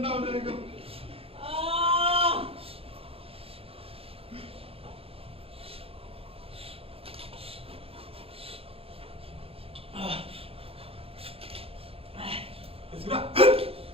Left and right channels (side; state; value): left; late; 0.27 ms